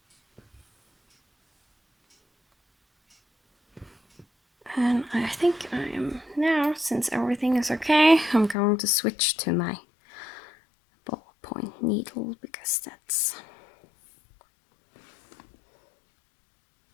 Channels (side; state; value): right; drops out; at 8.6 s